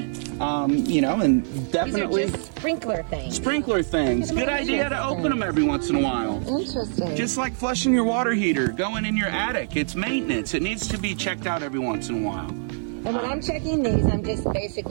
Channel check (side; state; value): left; silent; 55 dB below the other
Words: you know, and definitely These are just sprinkler things. Sprinkler things. Good idea to open them every once in a while. Interesting. Just like flushing your water heater, going in your attic. It's maintenance. It needs to be checked out every once in a while. And when I'm checking these, I'm just